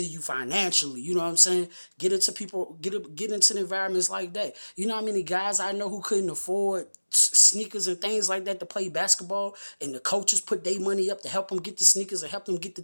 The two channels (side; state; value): both; inverted; correlation -1.00